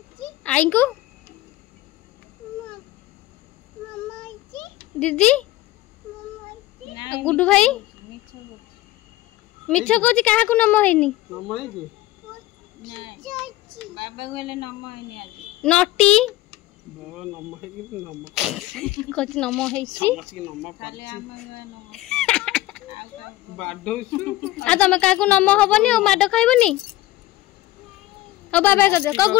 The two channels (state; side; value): quieter; right; 16.7 dB